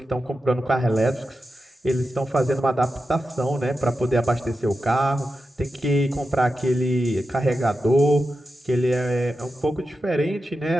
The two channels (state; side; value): normal; both; correlation 0.90